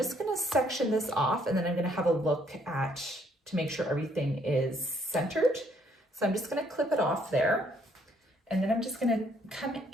gonna section this off, and then I'm gonna have a look to make sure everything is centered. So I'm just gonna clip it off there, and then I'm just gonna come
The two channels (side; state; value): both; normal; correlation 0.67